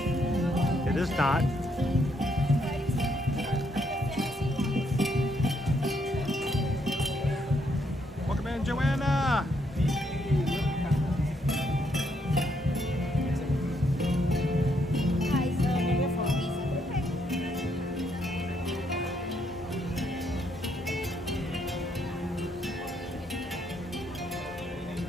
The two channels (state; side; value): normal; both; correlation 0.74